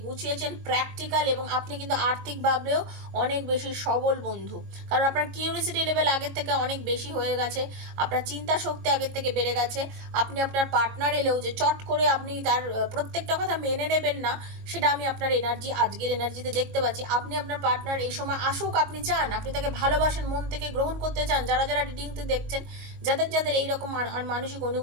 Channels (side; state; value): left; late; 22 ms